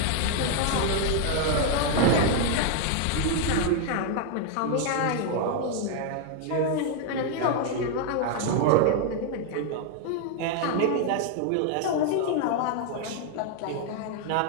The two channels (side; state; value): both; different; correlation 0.00